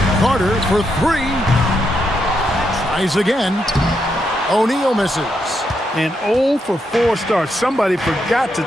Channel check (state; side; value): normal; both; correlation 0.81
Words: Carter for 3. Tries again. O'Neal misses. An 0 for 4 start. Somebody forgot to